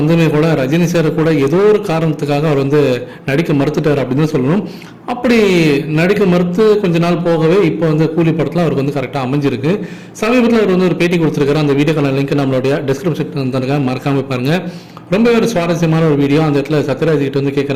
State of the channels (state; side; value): identical; both; correlation 1.00